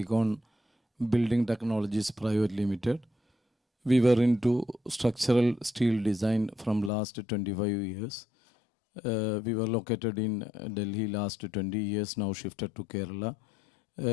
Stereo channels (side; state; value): right; drops out; at 6.9 s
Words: Building Technologies Private Limited. We were into structural steel design from last 25 years. We were located in Delhi last 20 years, now shifted to Kerala.